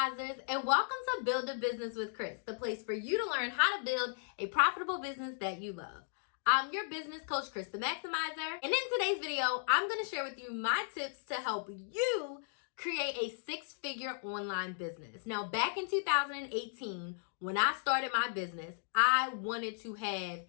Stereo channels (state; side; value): silent; right; digital silence